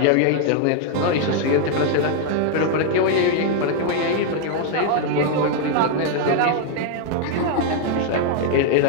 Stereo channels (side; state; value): both; different; correlation 0.00